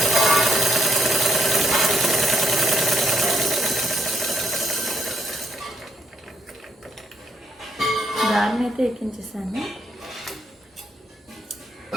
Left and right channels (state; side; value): normal; both; correlation 0.74